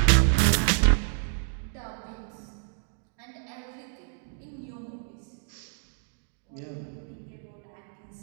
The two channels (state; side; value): silent; left; digital silence